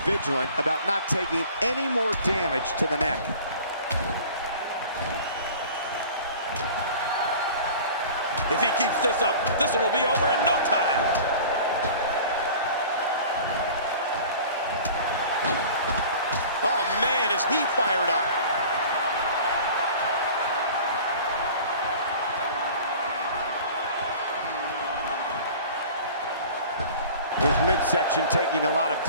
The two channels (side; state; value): both; inverted; correlation -0.43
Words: vigilant about not taking any more damage to the neck. If he keeps this up, this one will be over in no time. Oh, man, is he fired up. His midsection taking a lot of